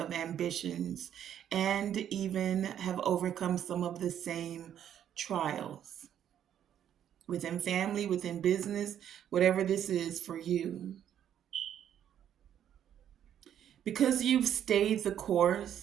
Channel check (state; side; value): quieter; left; 10.0 dB